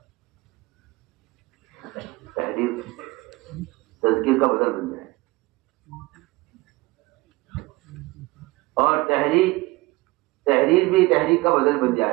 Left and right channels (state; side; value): quieter; left; 22.1 dB